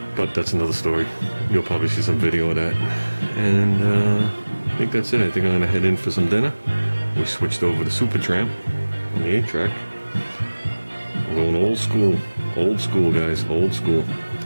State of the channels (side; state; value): both; inverted; correlation -1.00